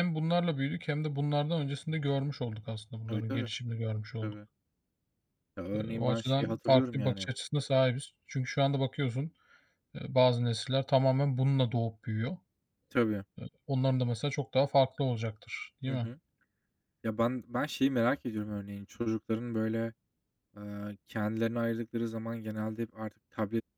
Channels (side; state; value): both; identical; correlation 1.00